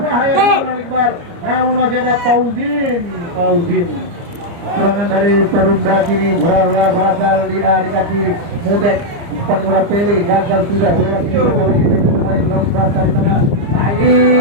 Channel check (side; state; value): left; late; 29 ms